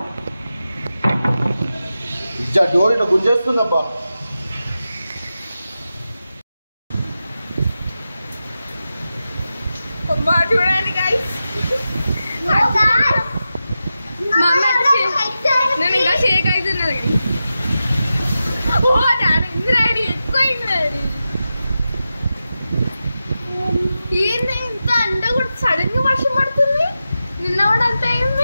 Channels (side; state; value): both; inverted; correlation -0.92